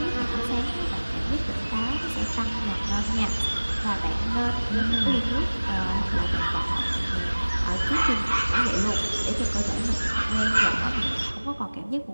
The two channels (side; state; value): both; inverted; correlation -1.00